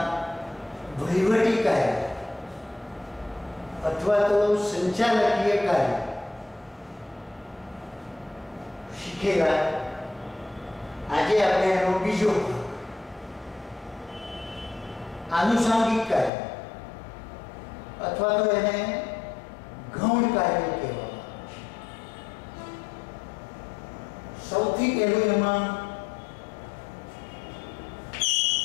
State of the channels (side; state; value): right; drops out; at 16.3 s